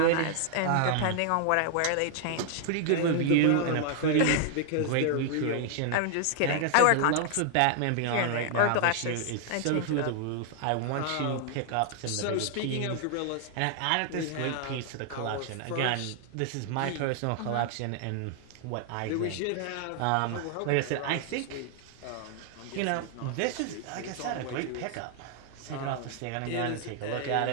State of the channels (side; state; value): both; different; correlation 0.00